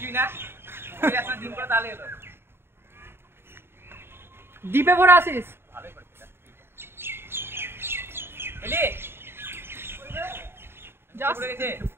না ওই একটা দিন করে তাহলে হলো ডিপে ভরে আসিস ভালোই করছিস এলি যা পড়ে গেছে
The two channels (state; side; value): late; left; 0.11 ms